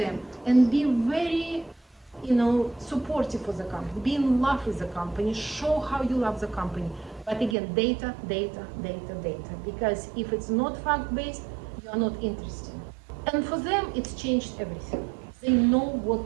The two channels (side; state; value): left; drops out; at 7.6 s